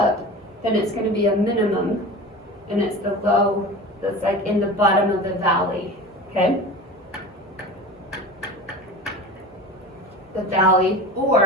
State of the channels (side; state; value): both; normal; correlation 0.33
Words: then it's going to be a minimum, and it's the low that's like in the bottom of the valley. Okay? The valley,